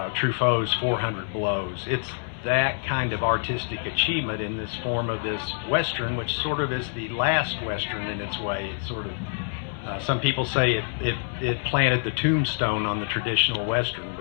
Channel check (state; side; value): silent; right; digital silence